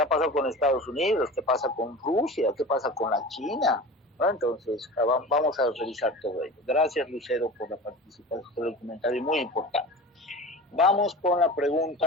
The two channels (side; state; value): both; normal; correlation 0.34